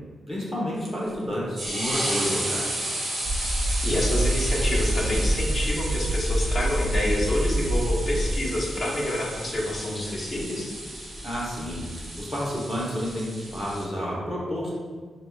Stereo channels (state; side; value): normal; both; correlation 0.89